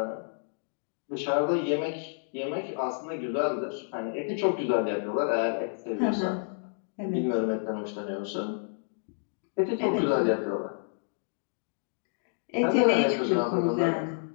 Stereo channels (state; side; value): silent; right; digital silence